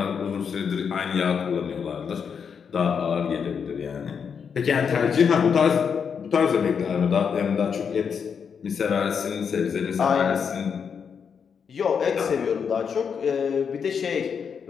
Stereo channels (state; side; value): quieter; right; 6.7 dB